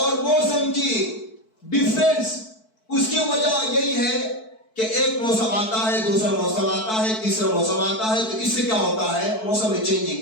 موسم کی ڈیفرنس, اس کی وجہ یہی ہے کہ ایک موسم آتا ہے, دوسرا موسم آتا ہے, تیسرا موسم آتا ہے, تو اس سے کیا ہوتا ہے موسم میں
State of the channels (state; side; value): late; right; 4.6 ms